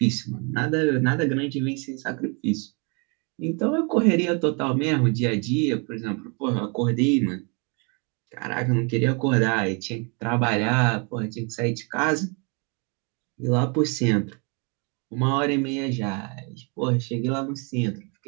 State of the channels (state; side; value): quieter; left; 33.8 dB